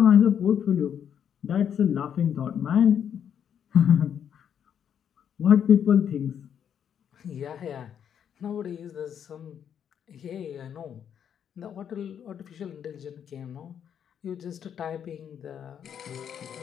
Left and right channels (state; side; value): quieter; right; 8.6 dB